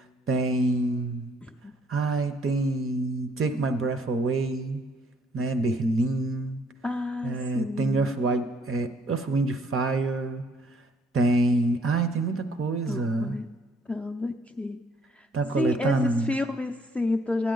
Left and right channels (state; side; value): normal; both; correlation 0.64